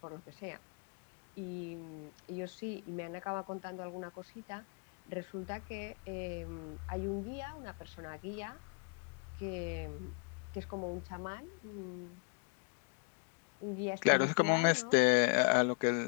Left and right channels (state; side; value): quieter; right; 39.7 dB